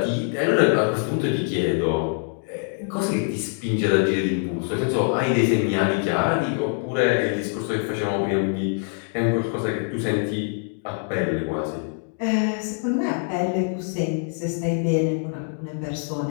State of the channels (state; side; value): silent; right; 55 dB below the other